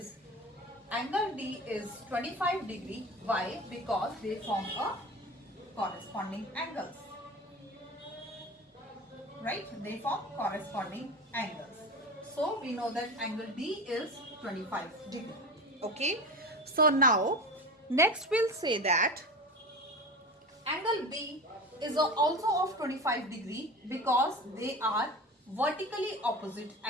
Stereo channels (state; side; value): normal; both; correlation 0.29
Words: 25 degree. Why? Because they form a corresponding angles. Right? They form corresponding angles. So we know that angle D is 25 degree. Okay. So now next we'll say that angle B is also of 25 degree because they are vertically opposite